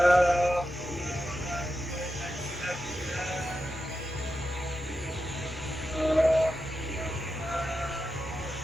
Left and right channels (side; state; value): both; normal; correlation 0.89